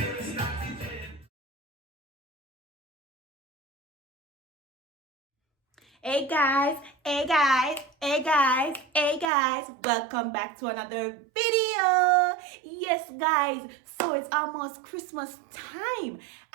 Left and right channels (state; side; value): drops out; left; at 9.3 s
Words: Hey guys, hey guys, hey guys, hey guys, welcome back to another video. Yes guys, so it's almost Christmas time